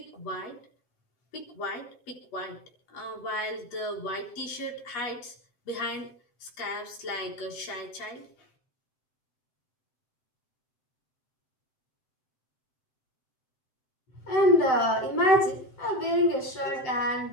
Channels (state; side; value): late; right; 7.8 ms